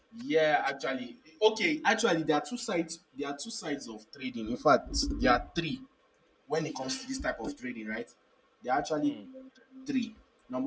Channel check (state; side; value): identical; both; correlation 1.00